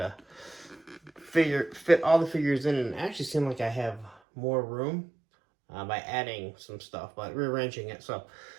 fit all the figures in, and it actually seemed like I have more room by adding some stuff, but rearranging it. So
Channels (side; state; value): left; drops out; at 4.2 s